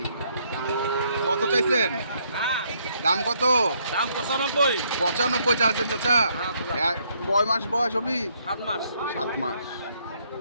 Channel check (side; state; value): both; inverted; correlation -0.70